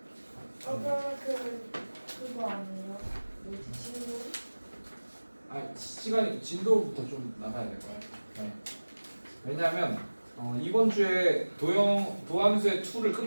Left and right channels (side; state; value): both; inverted; correlation -1.00